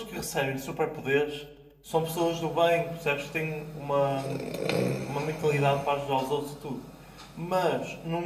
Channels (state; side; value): identical; both; correlation 1.00